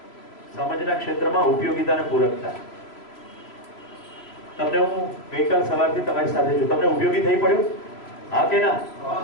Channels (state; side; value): late; right; 3.0 ms